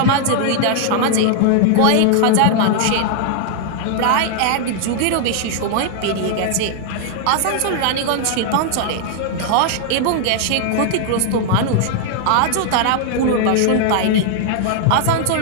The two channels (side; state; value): both; different; correlation 0.00